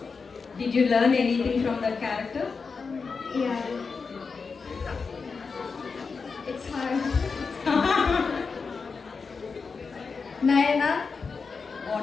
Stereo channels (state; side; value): quieter; right; 4.9 dB